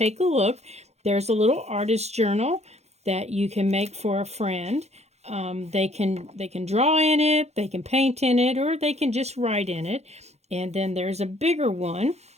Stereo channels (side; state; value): left; late; 0.31 ms